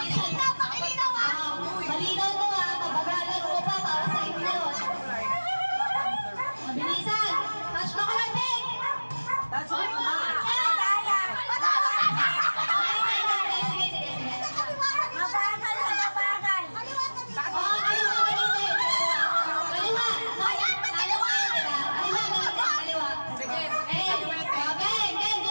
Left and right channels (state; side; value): inverted; both; correlation -1.00